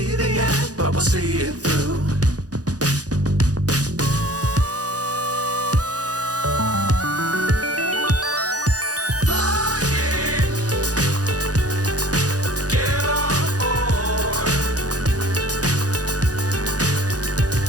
the end, but we'll see it through.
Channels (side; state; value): left; late; 0.68 ms